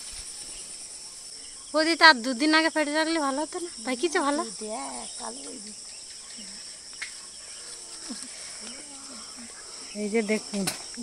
ওদি তার 2 দিন আগে পেড়ে রাখলে ভালো হতো না, তাই কিছু ভালো। এই যে দেখুন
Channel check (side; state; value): both; identical; correlation 1.00